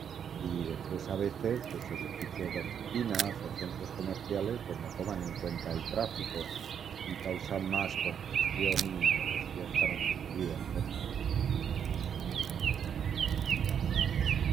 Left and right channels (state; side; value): quieter; left; 8.1 dB